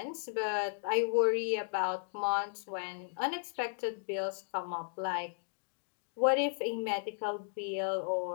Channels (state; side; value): silent; right; digital silence